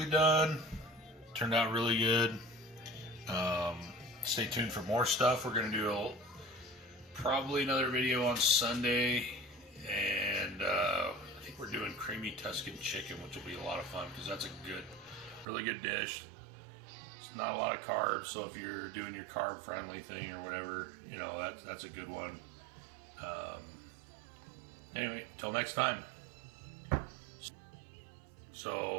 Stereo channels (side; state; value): left; drops out; at 15.5 s